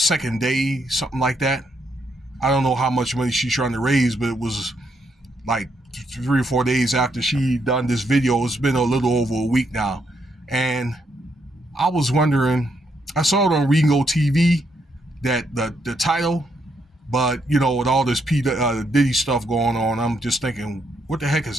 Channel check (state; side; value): normal; both; correlation 0.76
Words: day, something like that. I don't know how much money she's trying to raise, but it was like 3 or 4 days after she done this video. It's been a little over a week now. And I was wondering, I saw it on Ringo TV, that the title, but with all this Diddy stuff going on, I'm just thinking, who the heck